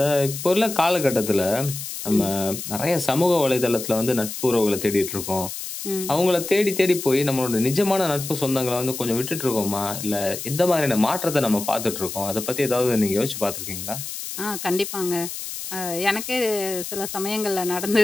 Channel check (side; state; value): left; noise; hiss, 8 dB below the sound